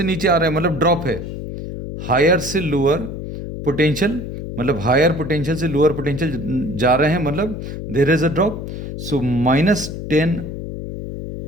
नीचे आ रहा है मतलब ड्रॉप है। हायर से लोअर पोटेंशियल मतलब हायर पोटेंशियल से लोअर पोटेंशियल जा रहे हैं मतलब there is a drop. So minus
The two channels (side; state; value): left; noise; hum, 7 dB below the sound